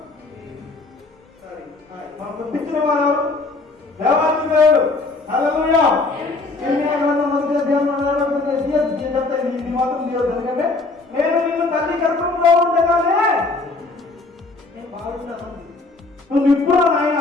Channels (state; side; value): quieter; right; 3.5 dB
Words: మనం పుట్టించిన వాడు ఎవరు, దేవాది దేవుడు. హల్లెలూయా. ఇది మాత్రం దేవుడు, ఎందుకంటే నేను నిన్ను తల్లి గర్భంలో ఉండగానే నేను బాగున్నాను, నువ్వు ఇప్పుడు నాయన